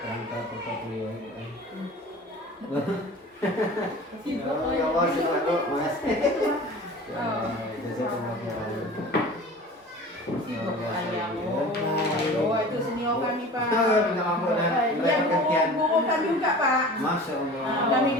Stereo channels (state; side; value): normal; both; correlation 0.39